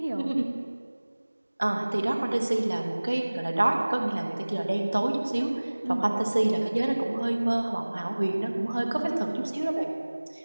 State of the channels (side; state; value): both; inverted; correlation -1.00